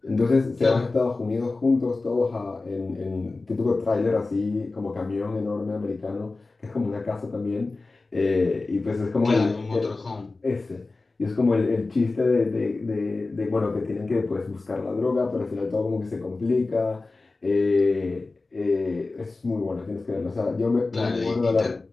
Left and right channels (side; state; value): right; quieter; 3.5 dB